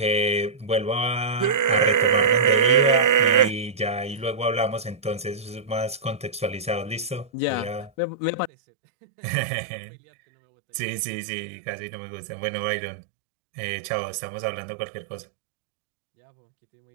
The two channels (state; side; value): drops out; left; at 8.5 s